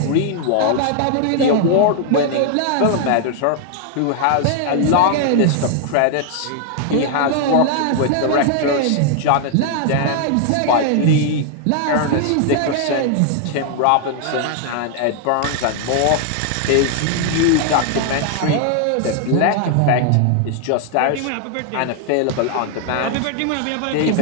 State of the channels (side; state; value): both; different; correlation 0.00